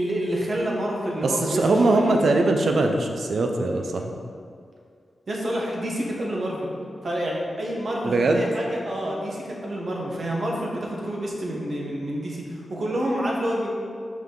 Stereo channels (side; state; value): both; normal; correlation 0.88